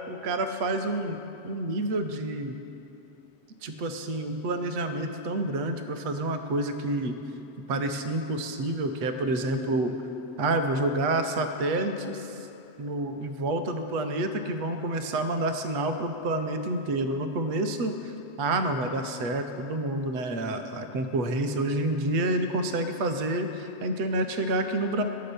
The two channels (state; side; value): late; left; 8.1 ms